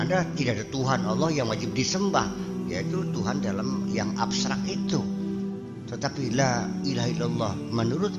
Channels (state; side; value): identical; both; correlation 1.00